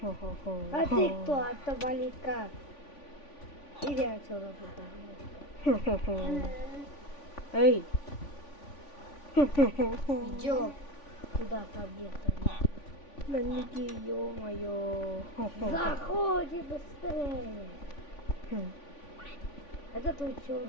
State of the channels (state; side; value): late; right; 3.5 ms